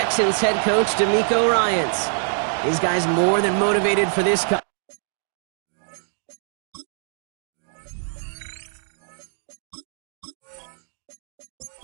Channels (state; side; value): silent; left; digital silence